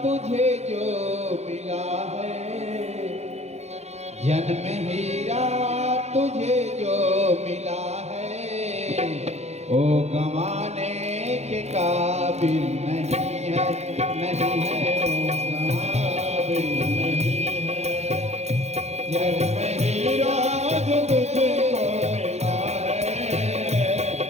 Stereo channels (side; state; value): left; late; 0.31 ms